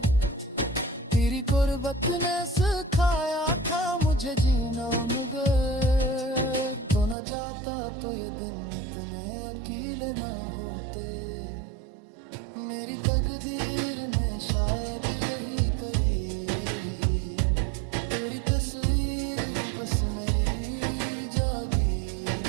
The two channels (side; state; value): left; drops out; at 7.2 s